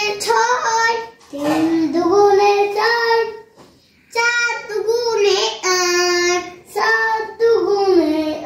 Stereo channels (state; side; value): identical; both; correlation 1.00